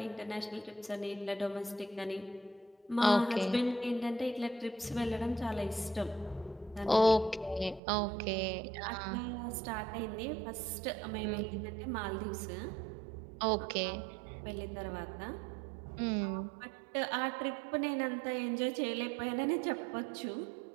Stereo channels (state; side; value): drops out; left; at 7.8 s